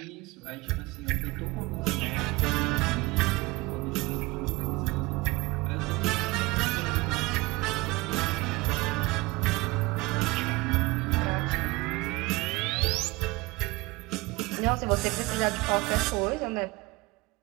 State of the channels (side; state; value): left; quieter; 22.7 dB